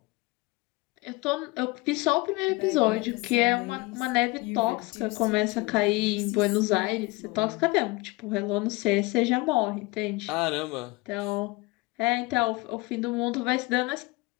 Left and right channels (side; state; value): right; quieter; 23.4 dB